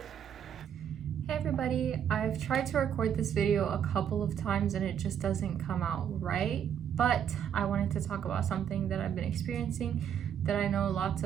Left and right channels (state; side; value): quieter; left; 8.9 dB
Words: Hey everybody, I've tried to record this video a couple of times and it just doesn't come out right, but I wanted to talk about something that I've been experiencing that I know lots